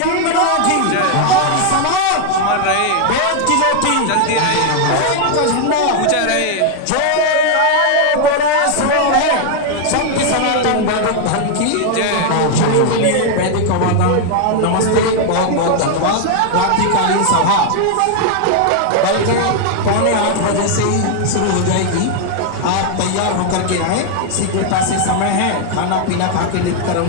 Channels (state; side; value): different; both; correlation 0.00